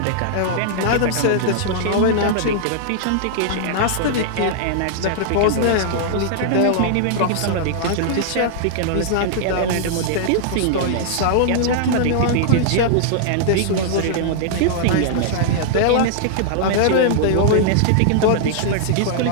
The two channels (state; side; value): different; both; correlation -0.01